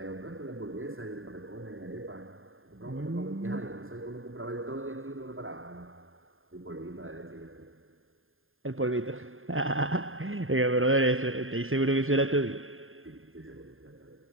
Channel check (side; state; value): left; late; 0.60 ms